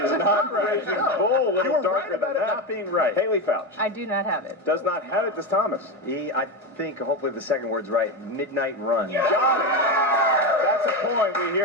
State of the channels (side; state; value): both; normal; correlation 0.16